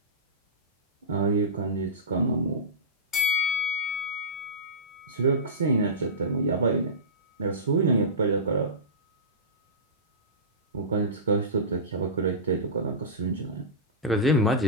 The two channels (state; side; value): normal; both; correlation -0.17